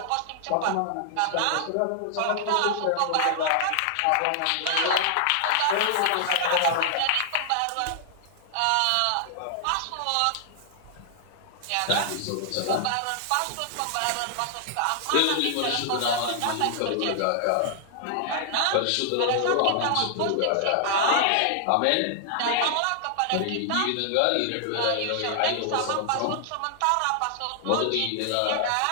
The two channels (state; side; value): different; both; correlation -0.01